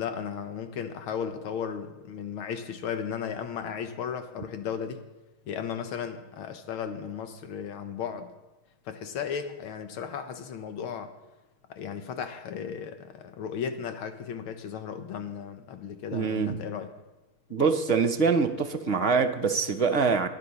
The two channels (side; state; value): right; late; 6.5 ms